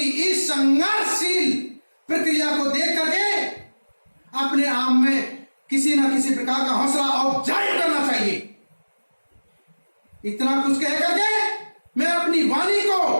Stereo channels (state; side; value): inverted; both; correlation -1.00